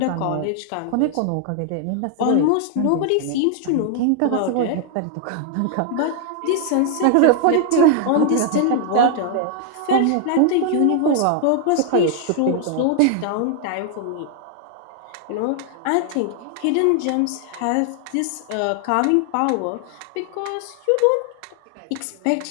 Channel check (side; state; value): both; different; correlation 0.00